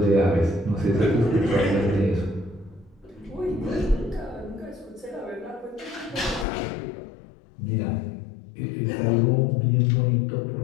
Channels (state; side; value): drops out; right; at 6.5 s